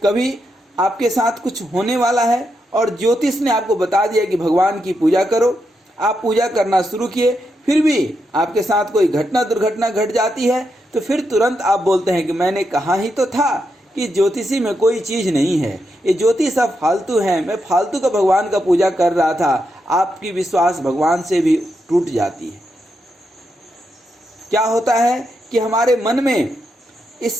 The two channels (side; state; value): both; normal; correlation 0.83